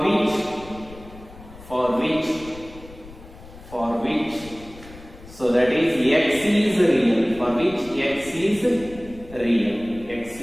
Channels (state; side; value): noise; left; rumble, 18 dB below the sound